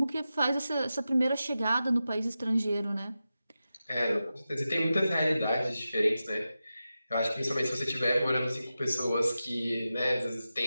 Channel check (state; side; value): inverted; both; correlation -0.92